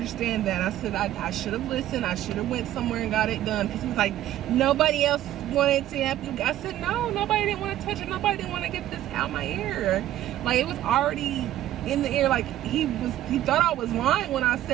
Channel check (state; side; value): quieter; left; 13.2 dB